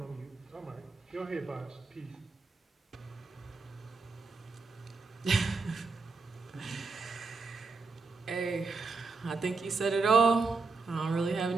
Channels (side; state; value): left; quieter; 4.2 dB